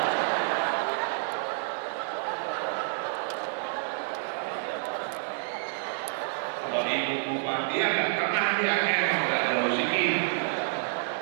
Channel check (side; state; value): left; silent; digital silence